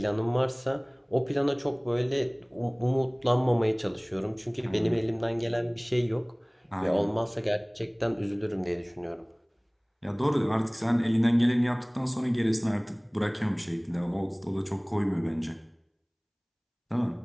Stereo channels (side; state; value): both; identical; correlation 1.00